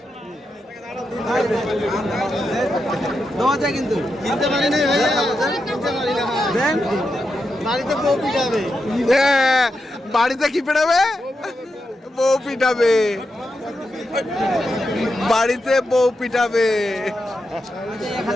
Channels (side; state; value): both; normal; correlation 0.86